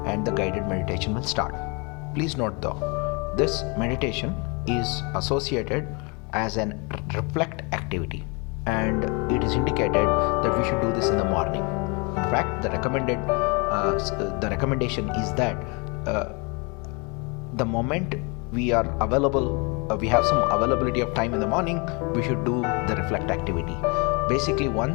and the guided meditation will start. Please note though, this meditation is associated as an reflect activity, and it is indicated that we should do this in the morning. In fact, the recommendation is that the moment we are available, we have some availability of time in the morning, we should do the reflect activity. Basically,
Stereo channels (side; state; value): right; quieter; 31.1 dB